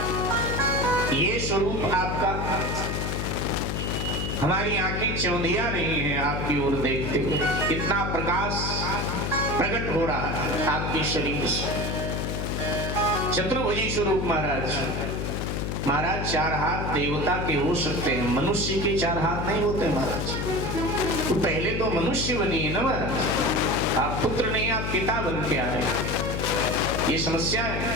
ये स्वरूप आपका, हमारी आंखें चौंधिया रही हैं आपकी ओर देखते हुए। इतना प्रकाश प्रकट हो रहा है आपके शरीर से। चतुर्भुजी स्वरूप महाराज। महाराज चार हाथ देवता के हो सकते हैं, मनुष्य के चार हाथ नहीं होते महाराज। तो पहले तो मनुष्य बनिए ना महाराज, आप पुत्र नहीं आप पिता बन के आए, ये समस्या है।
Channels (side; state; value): left; noise; hum, 2 dB below the sound